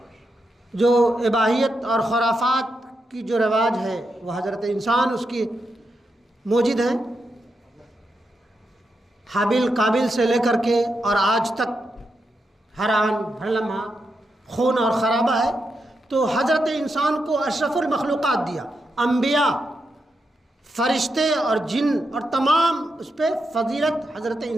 جو اباحیت اور خرافات کی جو رواج ہے، وہ حضرت انسان اس کی موجود ہیں، حابیل قابل سے لے کر کے اور آج تک ہر آن ہر لمحہ خون اور خرابہ ہے۔ تو حضرت انسان کو اشرف المخلوقات دیا، انبیاء، فرشتے اور جن، اور تمام اس پہ فضیلت حضرت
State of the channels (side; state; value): both; normal; correlation 0.85